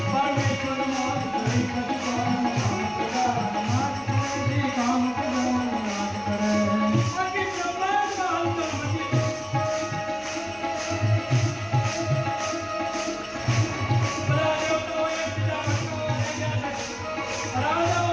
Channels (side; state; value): both; identical; correlation 1.00